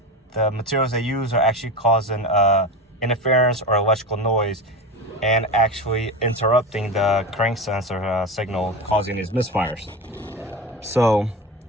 the materials they use are actually causing interference or electrical noise and actually interrupting the crank sensor signal, causing these misfires. So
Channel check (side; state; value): both; normal; correlation 0.24